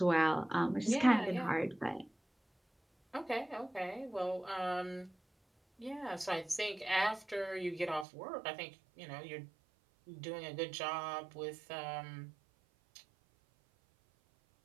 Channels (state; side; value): drops out; left; at 8.1 s